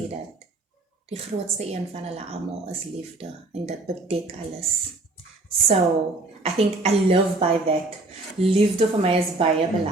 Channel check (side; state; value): left; quieter; 3.0 dB